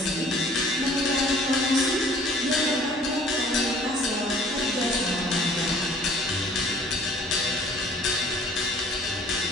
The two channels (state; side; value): normal; both; correlation 0.53